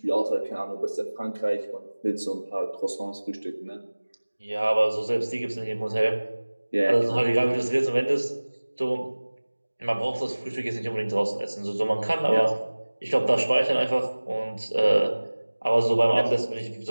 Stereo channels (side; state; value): both; inverted; correlation -1.00